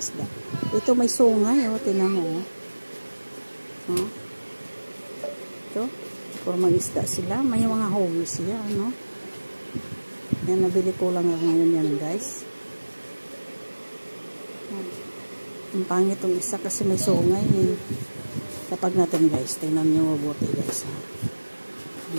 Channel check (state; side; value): inverted; both; correlation -1.00